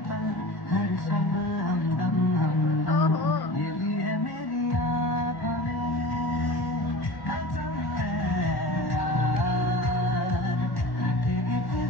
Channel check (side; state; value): right; late; 1.1 ms